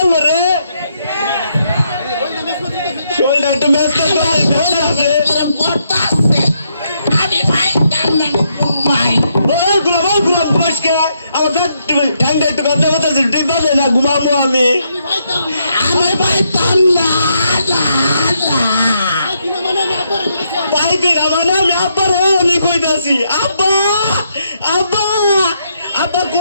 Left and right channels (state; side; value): inverted; both; correlation -0.77